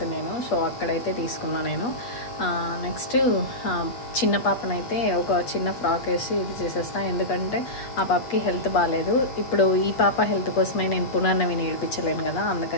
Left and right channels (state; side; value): late; right; 8.3 ms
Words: నేను, సో అక్కడైతే తీసుకున్నా నేను. నెక్స్ట్ చిన్న పాపనైతే ఒక చిన్న ఫ్రాక్ వేసి ఇది చేసేస్తా, ఎందుకంటే ఆ పాపకి హెల్త్ బాగాలేదు. ఇప్పుడు ఈ పాప హెల్త్ కోసమే నేను పునర్నవిని ఏడిపించలేను కదా,